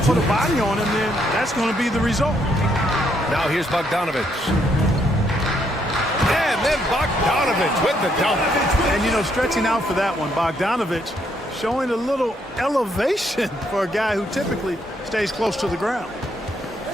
put a body on him, then that's going to be the result. Now here's Bogdanovich. And then Bogdanovich with the dunk. And, you know, stretching out for that one, Bogdanovich showing a little elevation for a guy who typically stays close to the ground.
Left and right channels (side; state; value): both; normal; correlation 0.73